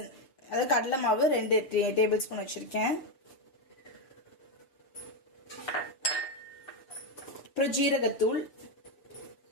அது கடலை மாவு 2 டேபிள் ஸ்பூன் வச்சிருக்கேன். அப்புறம் ஜீரகத்தூள்,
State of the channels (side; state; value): right; late; 7.2 ms